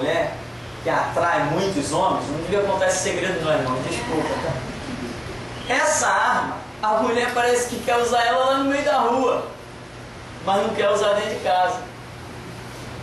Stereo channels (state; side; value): identical; both; correlation 1.00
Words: que atrai muitos homens, não devia contar esse segredo não, irmão, desculpa, tá? Essa arma, a mulher parece que quer usar ela lá no meio da rua, mas não quer usar dentro de casa.